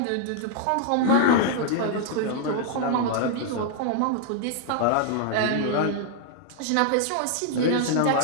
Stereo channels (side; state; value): both; different; correlation 0.00